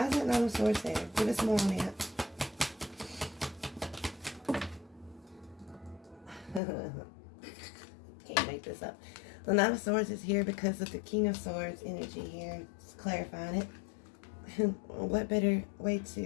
is that Nine of Swords there? Give us more on that. Can't make this up. The Nine of Swords is here because of the King of Swords energy here. Just clarifying it. What better way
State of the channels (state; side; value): drops out; right; at 6.6 s